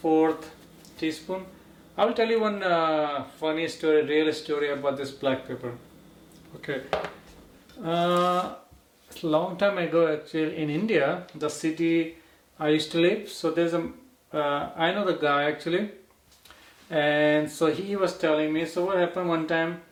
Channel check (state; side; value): identical; both; correlation 1.00